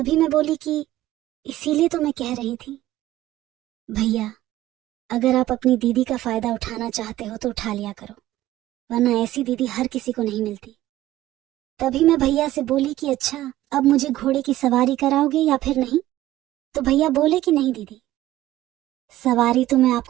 मैं बोली कि इसीलिए तो मैं कह रही थी भैया, अगर आप अपनी दीदी का फायदा उठाना चाहते हो तो उठा लिया करो, वरना ऐसी दीदी हर किसी को नहीं मिलती। तभी मैं भैया से बोली कि अच्छा, अब मुझे घोड़े की सवारी कराओगे या फिर नहीं। तो भैया बोले कि नहीं दीदी, सवारी तो मैं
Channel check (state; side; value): quieter; left; 15.0 dB